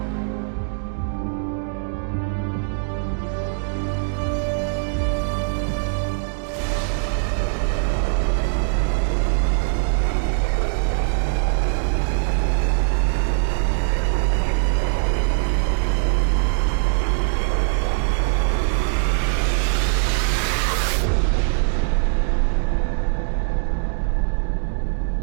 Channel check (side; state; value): left; silent; digital silence